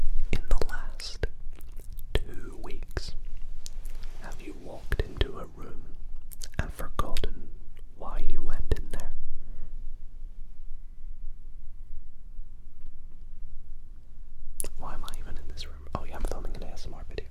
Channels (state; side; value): identical; both; correlation 1.00